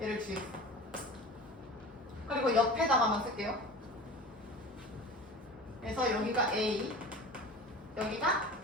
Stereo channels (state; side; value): normal; both; correlation 0.36